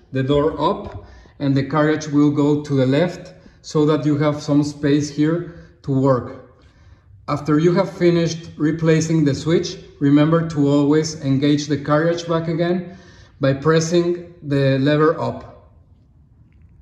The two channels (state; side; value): identical; both; correlation 1.00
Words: the door up and the carriage will go to the left so that you have some space here to work. After you have finished replacing the switch, remember to always engage the carriage back again by pressing the lever up.